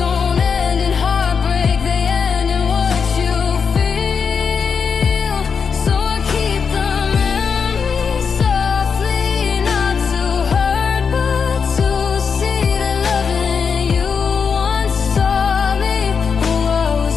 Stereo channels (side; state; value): right; quieter; 6.0 dB